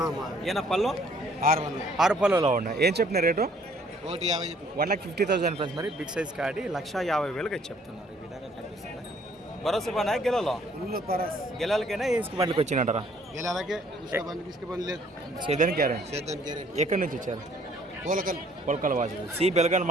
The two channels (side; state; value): both; normal; correlation 0.61